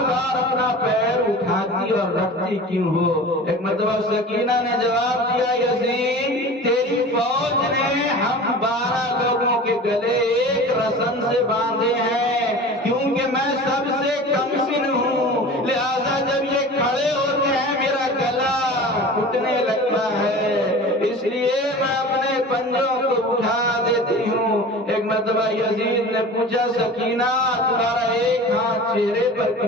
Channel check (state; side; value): normal; both; correlation 0.37